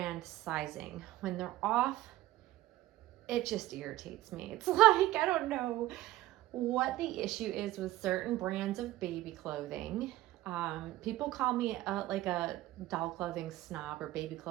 sizing. When they're off, it just irritates me. It's like, I don't know what the issue is with certain brands of baby clothing. People call me like a doll clothing snob or baby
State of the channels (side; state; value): left; quieter; 15.9 dB